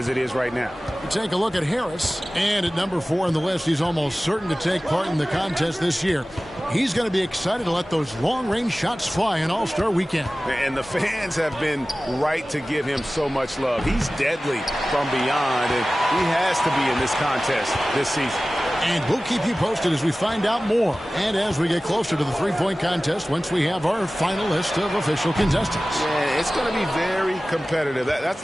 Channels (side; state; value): both; normal; correlation 0.97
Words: it is right now. You take a look at Harris, and at number 4 on the list, he's almost certain to take part in the contest this year. He's going to be excited to let those long-range shots fly in All-Star Weekend. And the fans have been right to give him so much love. He's deadly from beyond, and he has to be in this contest this season. And we'll keep you posted as we find out more. And as we get closer to the three-point contest, once we have our final list of official contestants. Yeah, it's going to be very competitive. That's